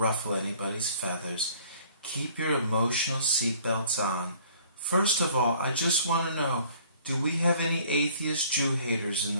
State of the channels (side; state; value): both; inverted; correlation -0.55